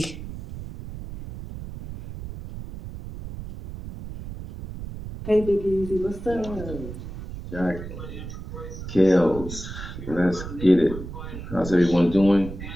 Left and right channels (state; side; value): noise; right; rumble, 10 dB below the sound